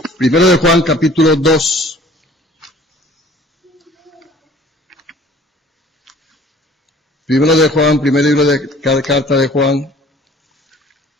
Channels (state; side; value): normal; both; correlation 0.51